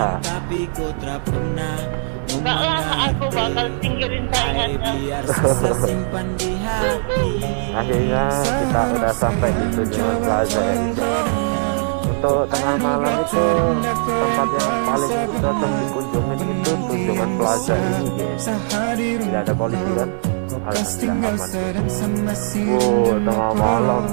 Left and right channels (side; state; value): left; silent; 66 dB below the other